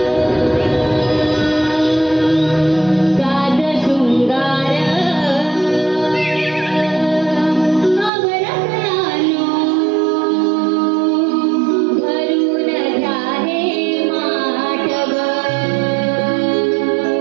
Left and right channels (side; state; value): left; drops out; at 8.1 s